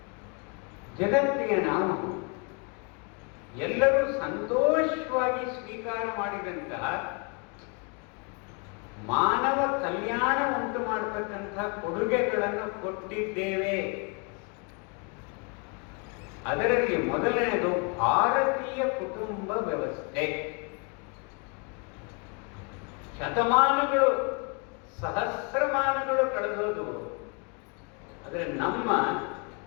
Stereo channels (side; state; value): right; quieter; 33.0 dB